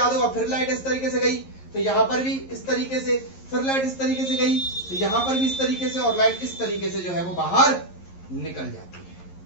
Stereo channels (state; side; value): late; right; 11 ms